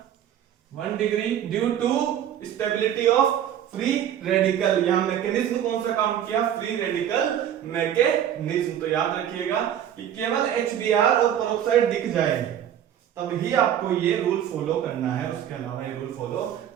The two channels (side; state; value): left; quieter; 10.2 dB